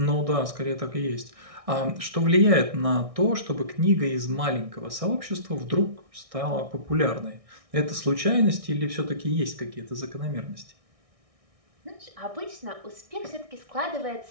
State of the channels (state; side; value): late; left; 1.6 ms